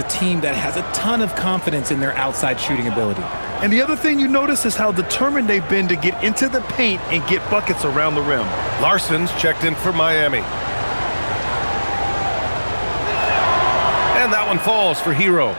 team that has a ton of confidence in their outside shooting ability. And the other thing you notice is how determined they've been to get into the paint and get buckets around the rim. Larson's checked in for Miami. And that one falls for Hero.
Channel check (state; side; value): inverted; both; correlation -1.00